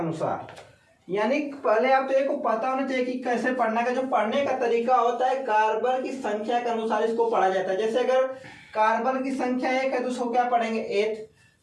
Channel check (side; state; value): both; identical; correlation 1.00